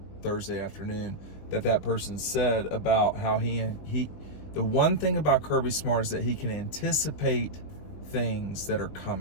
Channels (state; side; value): late; right; 21 ms